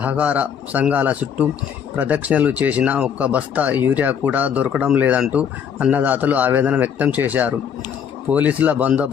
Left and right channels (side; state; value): right; quieter; 7.8 dB